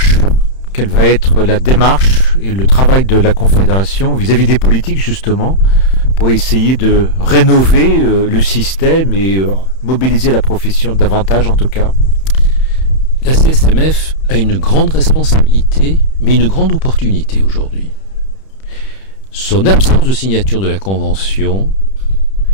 Quelle va être la démarche et le travail de la Confédération vis-à-vis des politiques, justement, pour essayer de rénover le système et mobiliser la profession davantage, en tout cas ? La CSMF a une grande responsabilité, mais une grande opportunité aujourd'hui. Son absence de signature de la Convention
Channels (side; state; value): right; late; 31 ms